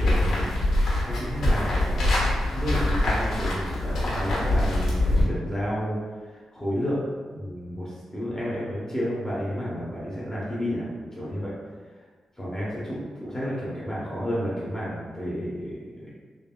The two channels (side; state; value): both; normal; correlation 0.89